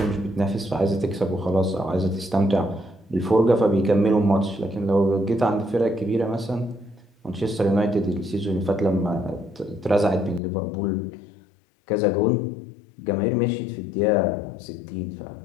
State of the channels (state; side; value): drops out; right; at 10.4 s